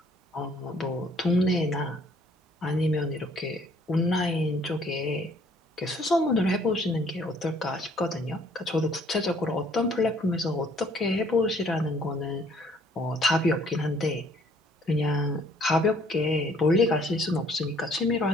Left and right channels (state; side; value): normal; both; correlation 0.61